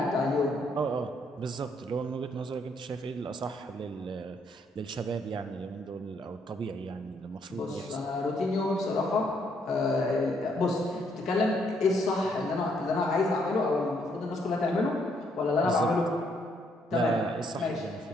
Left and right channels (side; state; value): both; normal; correlation 0.71